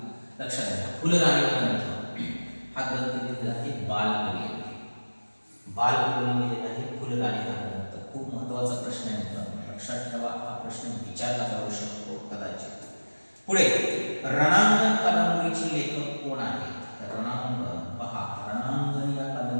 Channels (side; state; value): both; inverted; correlation -1.00